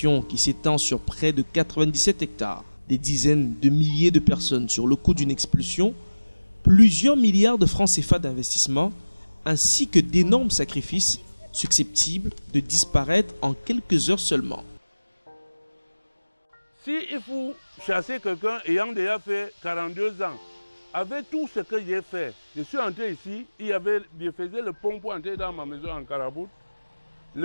qui s'étend sur près de 97 hectares, des dizaines de milliers de personnes sur le coût d'une expulsion, plusieurs milliards de francs CFA d'investissement, ainsi que d'énormes sacrifices susceptibles de disparaître en quelques heures seulement. Si il faut chasser quelqu'un ayant déjà fait 42 ans, avec tout ce que j'ai fait, je suis entré ici, je faisais le pont pour entrer dans ma maison en Carabout,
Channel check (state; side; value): inverted; both; correlation -1.00